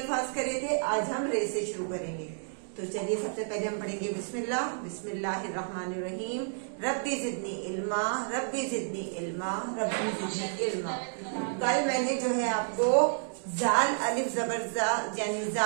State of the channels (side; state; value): left; silent; digital silence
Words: करे थे, आज हम रे से शुरू करेंगे। तो चलिए सबसे पहले हम पढ़ेंगे बिस्मिल्लाह। बिस्मिल्लाहिर्रहमानिर्रहीम। रब्बी जिदनी इल्मा, रब्बी जिदनी इल्मा, रब्बी जिदनी इल्मा। कल मैंने जो है आपको जाल अलिफ जबर जा यानी